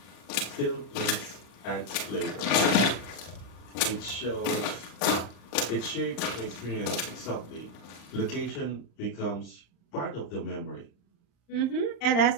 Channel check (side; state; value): right; late; 35 ms